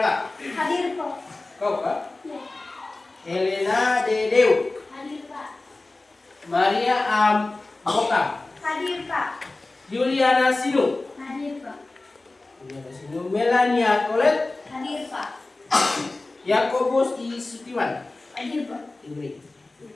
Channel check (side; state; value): right; quieter; 3.1 dB